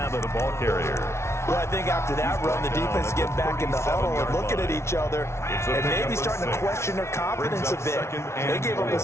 The ball carrier. Well, I think after that run, the defense get back in the huddle and looking at each other and maybe starting to question their confidence a bit. They gave up a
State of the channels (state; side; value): late; right; 0.13 ms